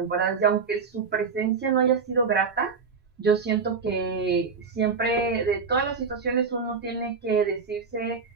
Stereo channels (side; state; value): left; quieter; 5.3 dB